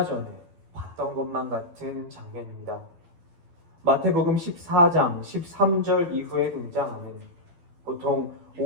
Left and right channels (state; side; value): late; left; 12 ms